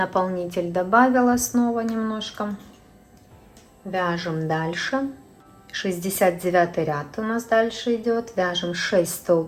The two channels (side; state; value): both; identical; correlation 1.00